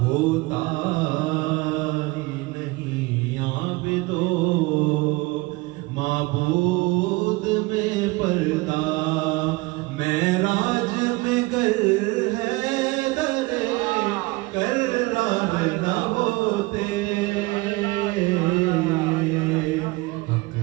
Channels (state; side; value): quieter; left; 22.7 dB